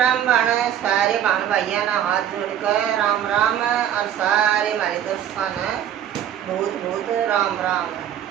बाण सारे बाण भाइया ना हाथ जोड़कर राम राम और सारे हमारे दोस्तों ने बहुत बहुत राम राम।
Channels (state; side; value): quieter; left; 10.3 dB